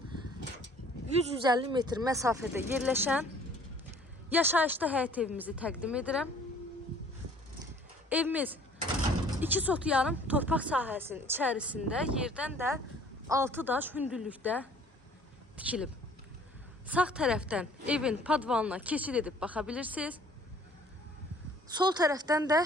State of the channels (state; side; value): normal; both; correlation 0.54